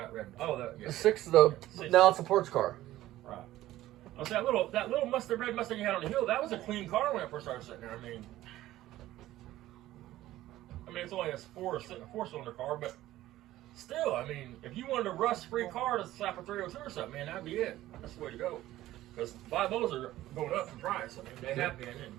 red? Oh, that. Yeah. The six of the now it's a ports car. Right. I was that little Mustang, red Mustang you had on the hill. That was a clean car when I first started sitting there. I mean, it's only a four-cylinder car, but still, I mean, if you wanted a rust-free car to slap a 302 or something, man, that'd be it. That's the way to go. Because 5.0s are going up in price. I mean, they have been, and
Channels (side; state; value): left; quieter; 15.1 dB